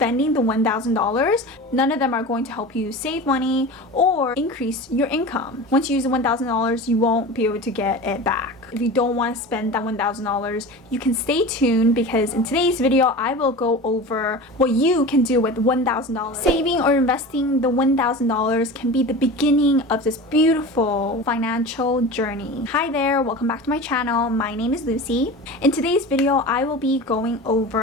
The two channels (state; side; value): normal; both; correlation 0.32